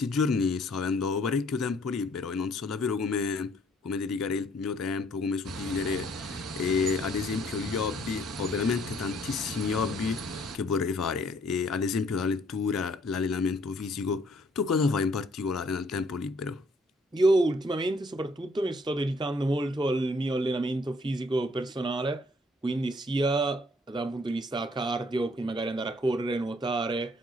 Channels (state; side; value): normal; both; correlation 0.63